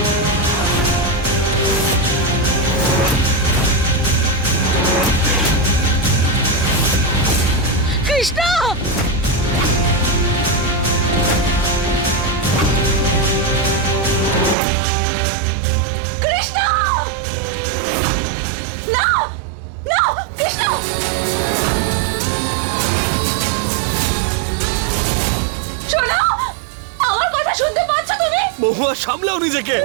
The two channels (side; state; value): left; drops out; at 14.6 s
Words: কৃষ্ণ! কৃষ্ণ! না! না! কৃষ্ণ! শোনো! আমার কথা শুনতে পাচ্ছ তুমি? মহুয়া, সামলাও নিজেকে।